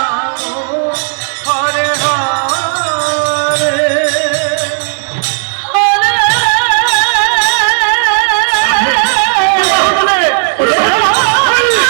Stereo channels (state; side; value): silent; left; 73 dB below the other